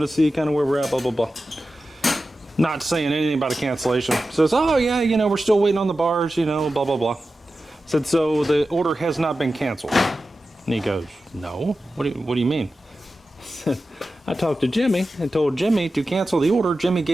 to see kind of where we're at, blah, blah, blah. Not saying anything about a cancellation. Says, oh yeah, you know, we're still waiting on the bars, you know, blah, blah, blah. Said, so the order has not been canceled. And he goes, no, what do you mean? I talked to Jimmy and told Jimmy to cancel the order. Jimmy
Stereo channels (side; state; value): both; normal; correlation 0.93